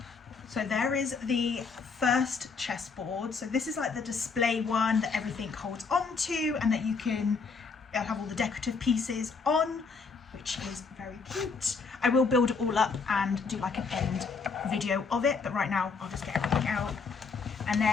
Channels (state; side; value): quieter; right; 4.9 dB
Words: So there is the first chessboard. So this is like the display one that everything holds onto and that you can it'll have all the decorative pieces on, which is very cute. I will build it all up and do like an end video of it, but right now I'll just get everything out. And